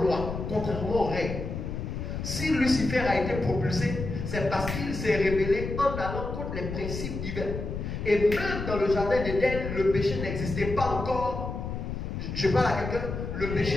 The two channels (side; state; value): left; noise; rumble, 5 dB below the sound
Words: lois, contrairement aux règles. Si Lucifer a été propulsé, c'est parce qu'il s'est rébellé en allant contre les principes divins. Et même dans le jardin d'Éden, le péché n'existait pas encore. Je parle à quelqu'un, le